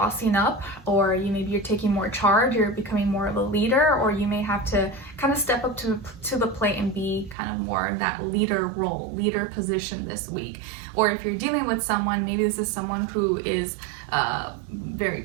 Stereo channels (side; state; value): left; drops out; at 7.4 s